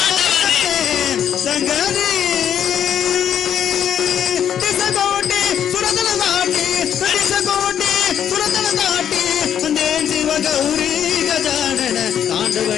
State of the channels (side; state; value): right; quieter; 9.4 dB